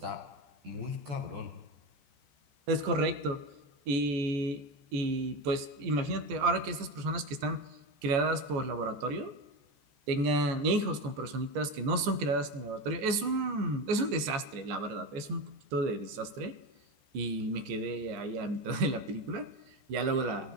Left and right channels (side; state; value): left; late; 14 ms